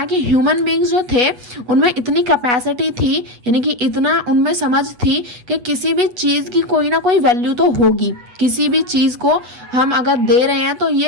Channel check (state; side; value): late; left; 8.1 ms